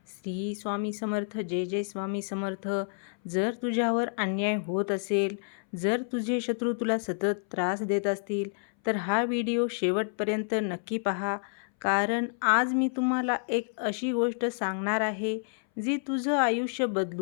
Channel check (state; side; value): silent; right; 58 dB below the other